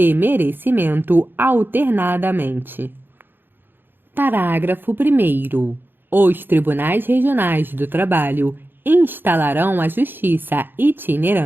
merecimento, alternadamente. Parágrafo 1º. Os Tribunais Regionais do Trabalho instalarão a justiça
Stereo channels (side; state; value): left; late; 0.098 ms